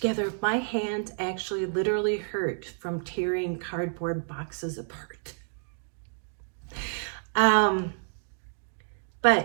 My hands actually literally hurt from tearing cardboard boxes apart.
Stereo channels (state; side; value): silent; left; digital silence